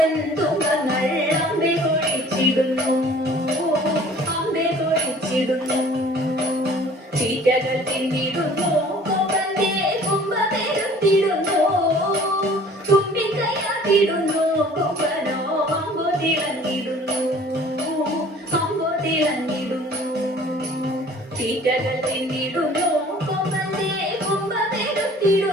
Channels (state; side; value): normal; both; correlation 0.50